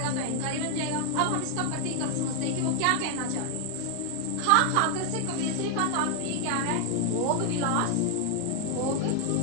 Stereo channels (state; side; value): different; both; correlation 0.00